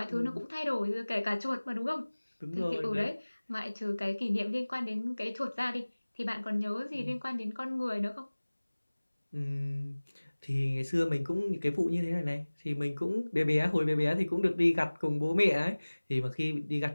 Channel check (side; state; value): both; inverted; correlation -1.00